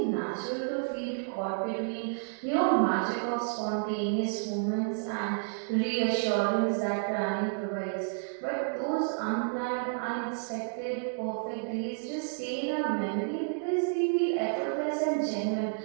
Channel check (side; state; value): left; silent; digital silence